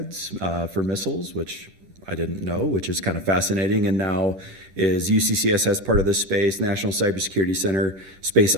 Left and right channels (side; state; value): left; late; 10 ms